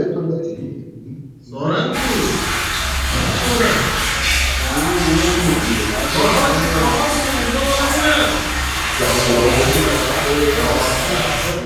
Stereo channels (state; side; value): identical; both; correlation 1.00